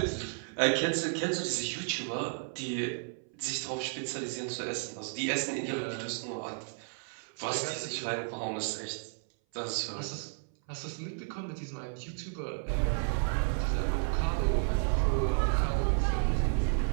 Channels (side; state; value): left; silent; 56 dB below the other